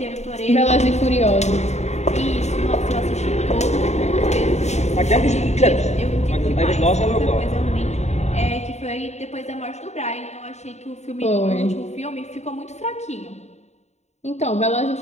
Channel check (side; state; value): right; late; 0.32 ms